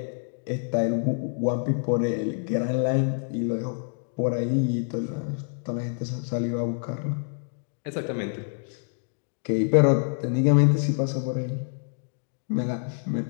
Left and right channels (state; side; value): silent; right; digital silence